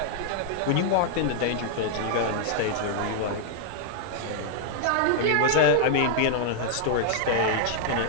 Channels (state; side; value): different; both; correlation -0.01